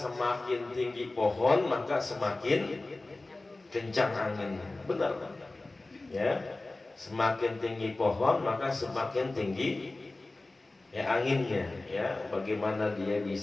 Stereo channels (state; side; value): quieter; right; 3.0 dB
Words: tinggi pohon maka semakin kencang anginnya. Benar, ya. Semakin tinggi pohon maka semakin tinggi ya anginnya. Ya, bagaimana dia